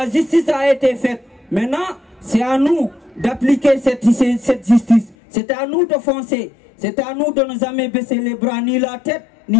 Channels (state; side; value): drops out; right; at 5.2 s